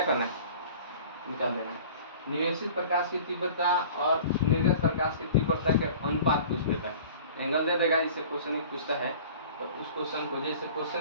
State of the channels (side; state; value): both; inverted; correlation -0.44